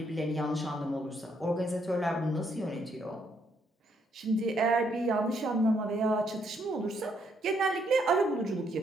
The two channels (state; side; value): normal; both; correlation 0.73